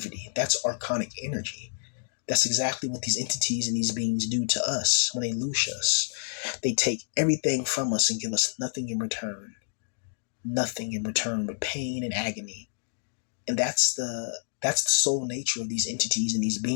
That's archonic energy. That's exactly what these entities and these beings do to us when they loose us. They take everything from us and give us nothing in return. Nothing in return but pain and agony. And that's the soul nature of these entities and these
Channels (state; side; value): silent; right; digital silence